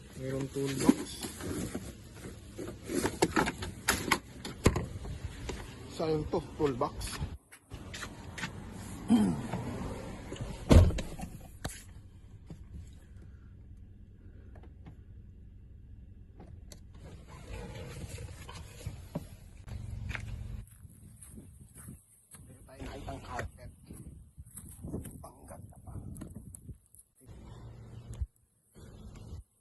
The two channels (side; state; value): both; identical; correlation 1.00